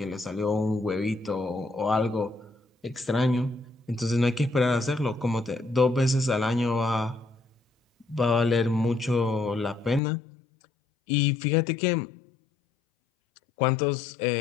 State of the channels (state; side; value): drops out; right; at 10.0 s